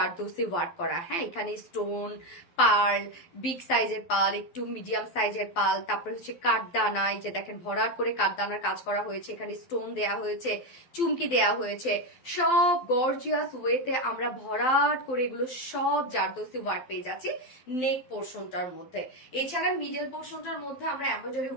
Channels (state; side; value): late; right; 12 ms